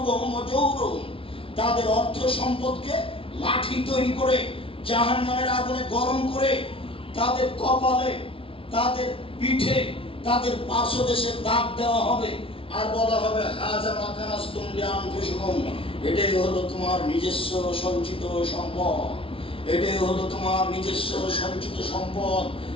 ওয়া জুহুরুহুম। তাদের অর্থ সম্পদকে লাঠি তৈরি করে জাহান্নামের আগুনে গরম করে তাদের কপালে, তাদের পিঠে, তাদের পার্শ্বদেশে দাগ দেওয়া হবে, আর বলা হবে হাযা মা কানাসতুম লিআনফুসিকুম। এটাই হলো তোমার নিজস্ব সঞ্চিত সম্পদ, এটাই হলো তোমার নিজস্ব সঞ্চিত সম্পদ।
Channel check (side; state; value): right; late; 0.26 ms